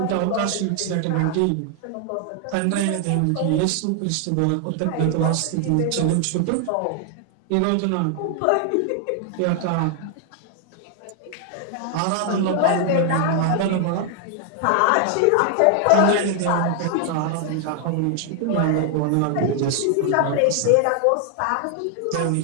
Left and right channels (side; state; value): both; different; correlation 0.00